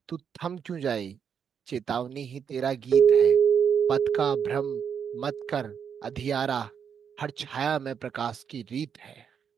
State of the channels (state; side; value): quieter; left; 7.4 dB